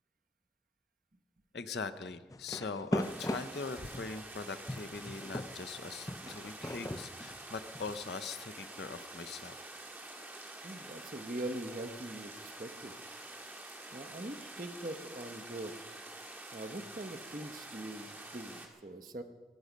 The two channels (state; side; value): normal; both; correlation 0.56